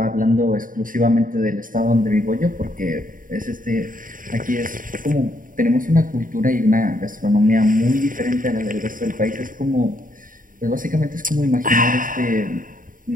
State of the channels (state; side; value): late; left; 0.39 ms